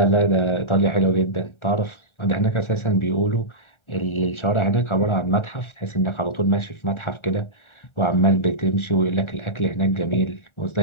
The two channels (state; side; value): late; right; 1.4 ms